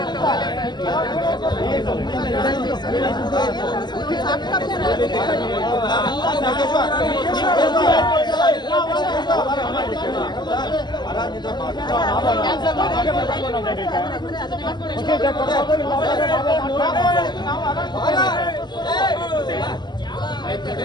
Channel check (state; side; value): late; right; 0.21 ms